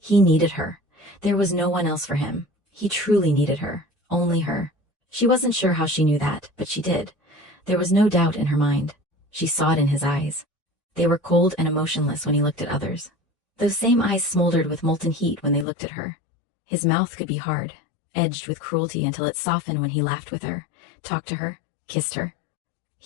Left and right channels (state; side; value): drops out; right; at 15.7 s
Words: He needed her. There was no one else for him. He truly needed her. Only her. She wasn't sure how she knew that, but she did. There was no doubt in her mind. She saw it in his eyes. They were cold and emotionless when he looked at others. Those same eyes smoldered with molten heat when they looked at her. His mouth could be hard, edged with cruelty until it softened when he laughed with her, talked to her, kissed her.